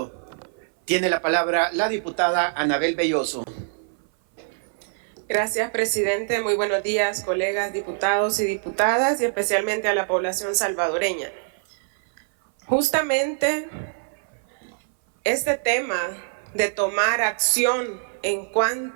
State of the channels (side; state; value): left; silent; 57 dB below the other